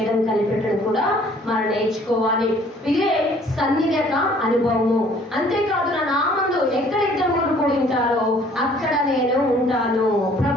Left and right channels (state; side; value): normal; both; correlation 0.57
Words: కనిపెట్టడం కూడా మనం నేర్చుకోవాలి. ఇదే సన్నిధి యొక్క అనుభవము. అంతేకాదు, నా నామందు ఎక్కడ ఇద్దరు కూడి ఉంటారో అక్కడ నేను ఉంటాను.